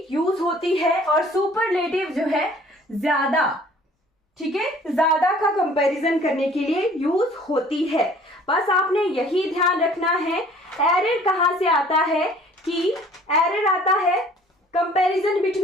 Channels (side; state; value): both; normal; correlation 0.53